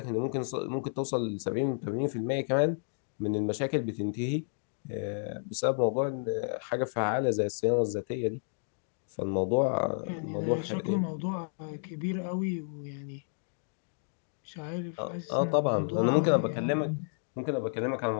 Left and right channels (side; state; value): right; silent; digital silence